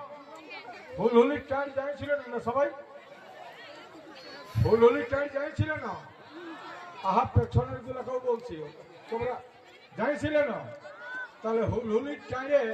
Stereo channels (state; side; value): identical; both; correlation 1.00